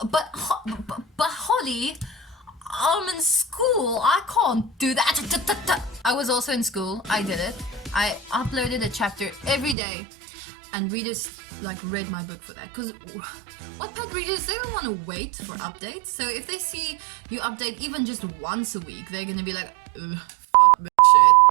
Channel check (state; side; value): drops out; left; at 9.8 s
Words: But Holly, I'm in school. I can't do that. I was also in school. I did it. I uploaded a chapter every day, and readers like read my book for that. Because Wattpad readers, they don't want to wait for updates. So if they see you update even just once a week, they're gonna be like, fuck this